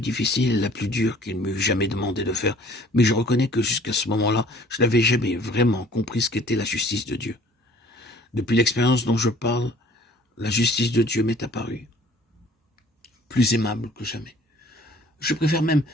difficile et la plus dure qu'il m'eût jamais demandé de faire, mais je reconnais que jusqu'à ce moment-là, je n'avais jamais vraiment compris ce qu'était la justice de Dieu. Depuis l'expérience dont je parle, la justice de Dieu m'est apparue, plus aimable que jamais. Je préfère même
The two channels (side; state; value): both; normal; correlation 0.53